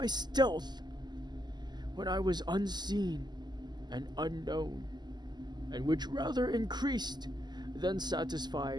stealth, when I was unseen and unknown, and which rather increased than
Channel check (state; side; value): late; left; 0.21 ms